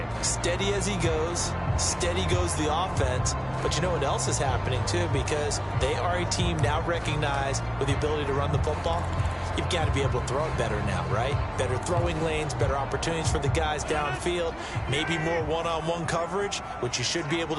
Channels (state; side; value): identical; both; correlation 1.00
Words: Steady as he goes, steady goes the offense. But you know what else is happening, too, because they are a team now recognized with the ability to run the football. You've got to be able to throw it better now, right? Better throwing lanes, better opportunities for the guys downfield, maybe more one-on-one coverage, which you should be able